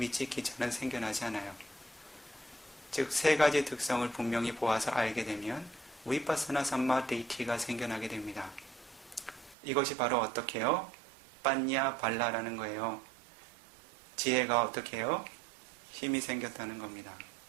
생겨나지 않아요. 즉 세 가지 특성을 분명히 보아서 알게 되면 위파사나 삼마디티가 생겨나게 됩니다. 이것이 바로 어떻게 해요? 빠냐 발라라는 거예요. 지혜가 어떻게 해요? 힘이 생겼다는 겁니다.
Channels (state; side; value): drops out; left; at 9.6 s